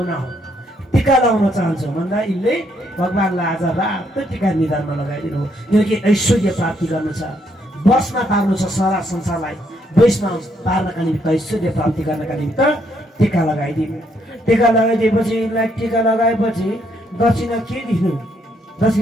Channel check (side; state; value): both; normal; correlation 0.73